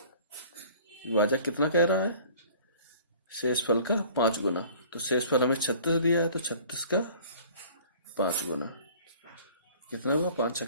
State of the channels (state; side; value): inverted; both; correlation -0.49